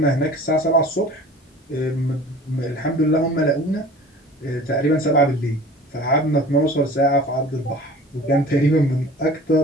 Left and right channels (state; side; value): normal; both; correlation 0.43